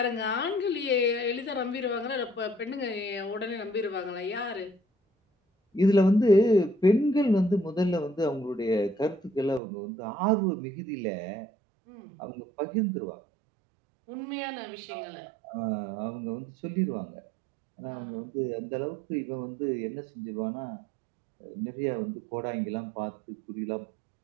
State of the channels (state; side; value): drops out; left; at 9.6 s